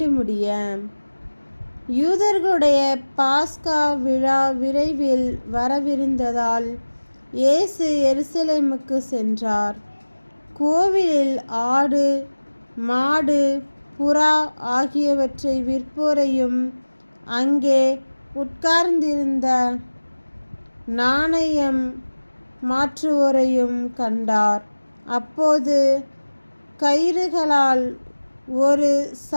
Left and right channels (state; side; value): inverted; both; correlation -1.00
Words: முடிய. யூதர்களுடைய பாஸ்கா விழா விரைவில் வரவிருந்ததால் இயேசு எருசலேமுக்கு சென்றார். கோவிலில் ஆடு, மாடு, புறா ஆகியவற்றை விற்போரையும் அங்கே உட்கார்ந்திருந்த நாணயம் மாற்றுவோரையும் கண்டார். அப்போது கயிறுகளால் ஒரு